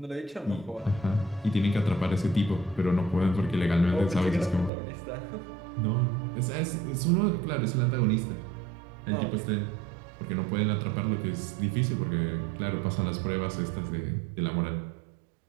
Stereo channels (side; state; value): left; drops out; at 4.7 s